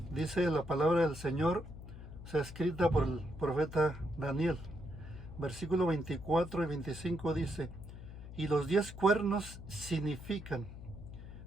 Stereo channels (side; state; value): left; noise; hum, 13 dB below the sound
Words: dice la palabra del Señor, escrita por el profeta Daniel. Versículo 24 y 25 dice: y los 10 cuernos significan